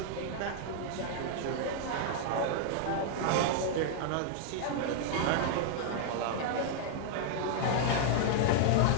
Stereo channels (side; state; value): both; different; correlation -0.01